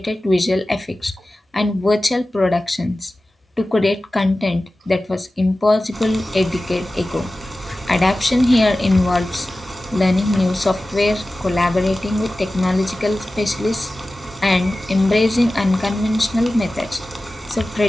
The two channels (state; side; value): normal; both; correlation 0.96